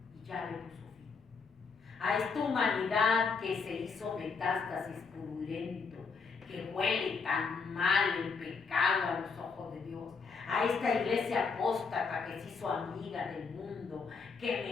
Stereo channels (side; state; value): right; quieter; 5.1 dB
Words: y ya le puso fin. A esta humanidad que se hizo metástasis purulento, que huele tan mal el pecado a los ojos de Dios, a esta iglesia apóstata que se hizo amiga del mundo, que